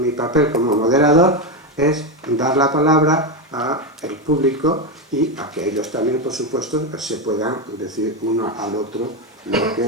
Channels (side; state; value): both; normal; correlation 0.10